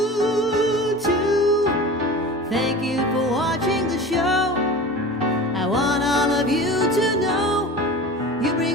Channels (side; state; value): both; normal; correlation 0.35